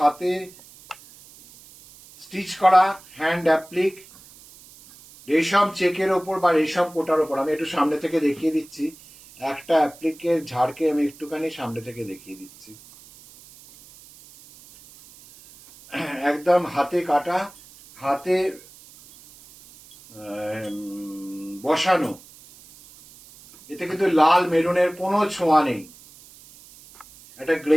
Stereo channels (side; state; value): right; noise; hiss, 22 dB below the sound